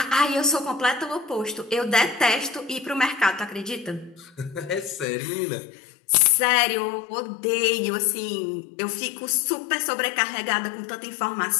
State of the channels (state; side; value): drops out; right; at 5.1 s